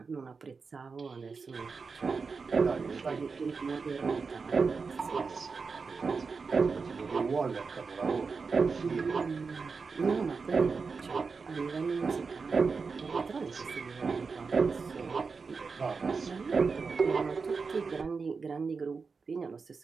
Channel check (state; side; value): quieter; left; 4.8 dB